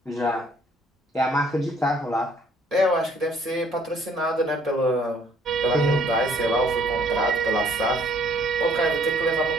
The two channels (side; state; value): both; normal; correlation 0.61